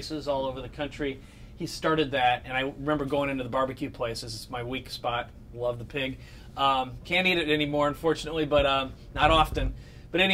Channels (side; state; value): both; identical; correlation 1.00